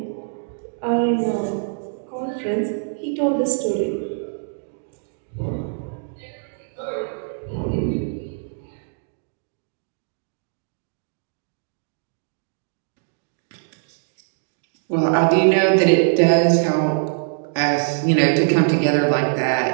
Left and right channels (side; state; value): left; silent; digital silence